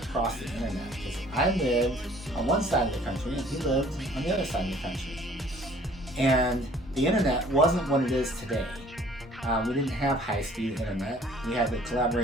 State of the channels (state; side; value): normal; both; correlation 0.55